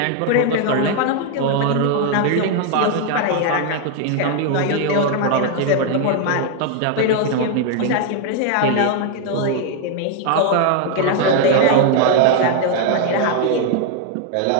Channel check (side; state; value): both; different; correlation 0.00